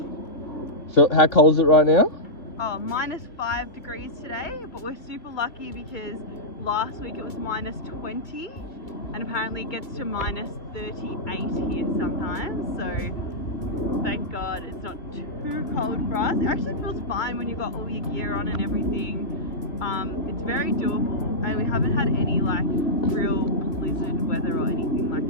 So how cold is it right now? Oh, -5 degrees today, but we're super lucky because last week it was -20 and apparently it gets to -38 here sometimes. So thank God it's not too cold for us. It actually feels fine when you've got all your gear on and everything. It's very doable, and we haven't had any like real blizzard weather or anything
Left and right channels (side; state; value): right; late; 2.3 ms